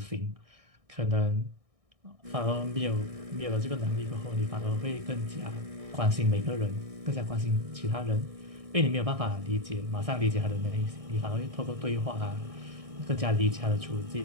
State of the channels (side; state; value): left; late; 1.6 ms